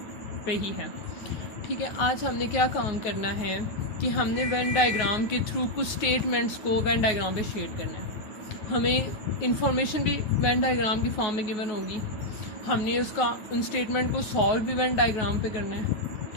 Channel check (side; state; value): right; late; 9.4 ms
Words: पे ही है। ठीक है, आज हमने क्या काम करना है कि हमने वेन डायग्राम के थ्रू कुछ स्टेटमेंट्स को वेन डायग्राम पे शेयर करना है। हमें इंफॉर्मेशन भी वेन डायग्राम की फॉर्म में गिवन होगी। हमने उसका उन स्टेटमेंट को सॉल्व भी वेन डायग्राम पे करना है।